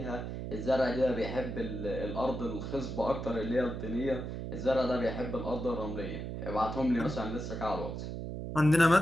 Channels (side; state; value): right; noise; hum, 6 dB below the sound